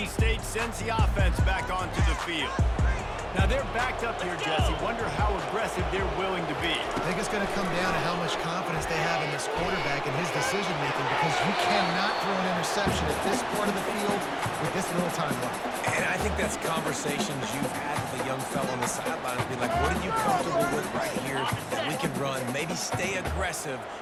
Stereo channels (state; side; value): identical; both; correlation 1.00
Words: State sends the offense back onto the field. Now they're backed up here, Jesse. Wonder how aggressive they're willing to be. I think it's going to come down to how much confidence they have in this quarterback and his decision-making, because you cannot throw an interception at this part of the field with this little time left. And I think that's conversations you've had with a young fellow on the sideline. Be like, what are you comfortable with right here that we can run? Maybe stay aggressive,